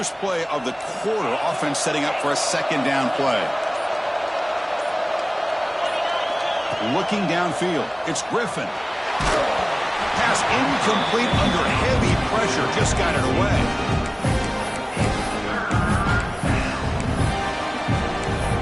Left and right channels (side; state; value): both; identical; correlation 1.00